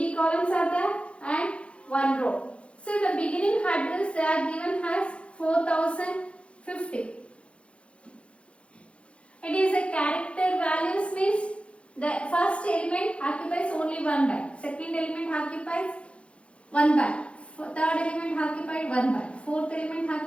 columns are there and 1 row. So the beginning address they are given as 4050. It is a character values means the first element occupies only 1 byte. Second element occupies 1 byte. Third element occupied 1 byte. Fourth element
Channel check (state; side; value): late; right; 0.060 ms